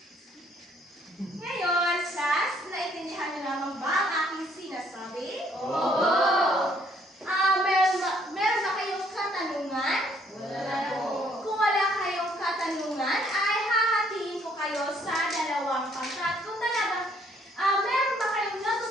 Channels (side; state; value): both; normal; correlation 0.65